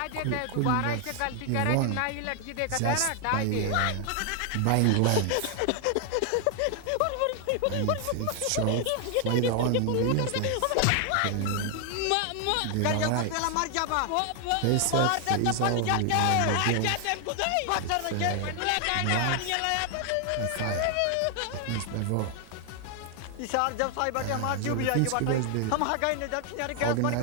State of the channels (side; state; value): both; different; correlation 0.00